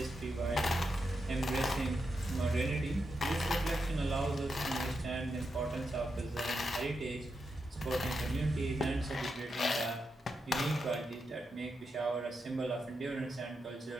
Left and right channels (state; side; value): normal; both; correlation 0.85